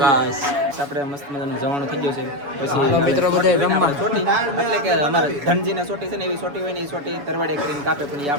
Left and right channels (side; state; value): left; late; 7.0 ms